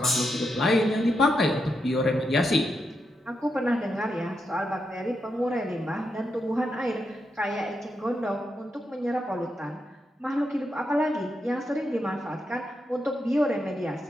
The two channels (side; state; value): both; normal; correlation 0.84